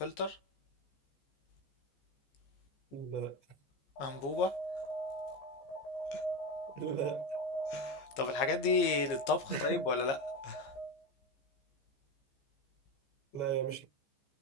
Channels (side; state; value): right; late; 15 ms